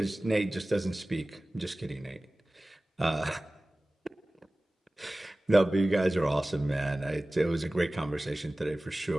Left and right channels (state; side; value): normal; both; correlation 0.98